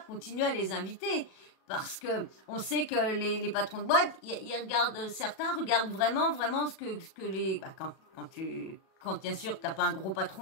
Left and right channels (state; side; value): late; right; 37 ms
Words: continuent à les inviter. Parce que on sait que les patrons de boîte, ils regardent, certains regardent vraiment ce que les, quand bien sûr t'as pas un gros